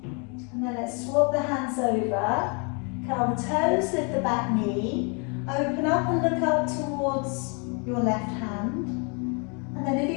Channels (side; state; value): right; quieter; 35.4 dB